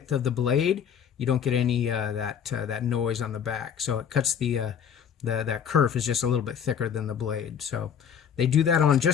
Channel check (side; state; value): right; quieter; 8.0 dB